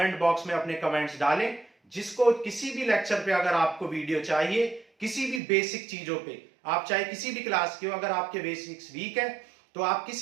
बॉक्स में अपने कमेंट्स डालें। जिसको किसी भी लेक्चर पे अगर आपको वीडियो चाहिए, किसी भी बेसिक चीजों पे, आप चाहे किसी भी क्लास के हो, अगर आपके बेसिक्स वीक है तो आप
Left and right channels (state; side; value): drops out; left; at 5.4 s